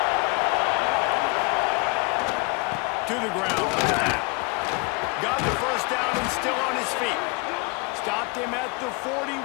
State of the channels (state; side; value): quieter; right; 29.6 dB